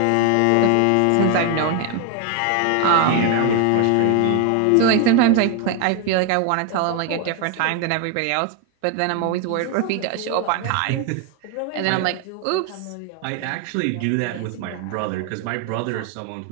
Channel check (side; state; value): both; different; correlation 0.01